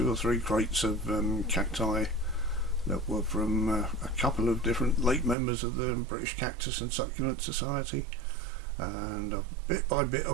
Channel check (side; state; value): left; drops out; at 5.4 s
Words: or 3 crates of cacti that were from a couple of different late members of the British Cactus and Succulent Society, and bit by bit